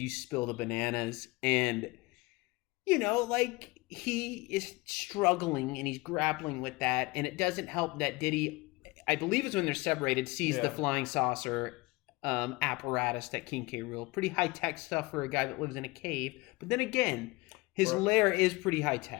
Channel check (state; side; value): quieter; right; 23.4 dB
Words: spill the bananas, and like he is struggling and he's grappling with that, and it doesn't help that Diddy, I believe it's when they're separated, sees the flying saucer apparatus that King K. Rool. Pretty high-tech stuff for a guy that lives in a cave, but then again, his lair is pretty